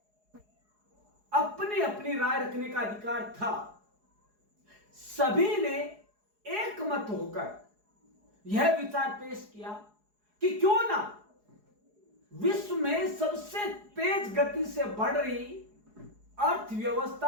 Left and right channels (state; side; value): late; left; 4.8 ms